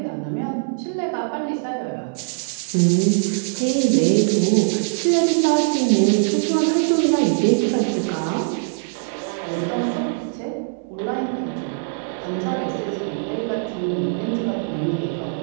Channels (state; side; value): silent; left; digital silence